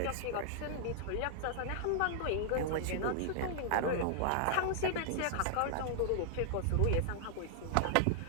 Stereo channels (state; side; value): different; both; correlation -0.01